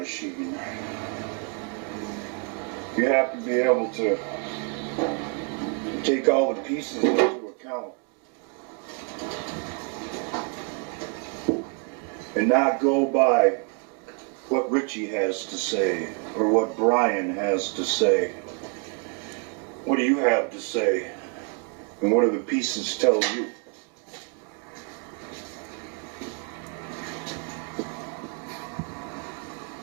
you have to be able to take all the pieces into account and not go by what Richie has to say or what Brian has to say. What do you have to say? And what do the pieces tell you?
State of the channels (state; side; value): quieter; left; 36.8 dB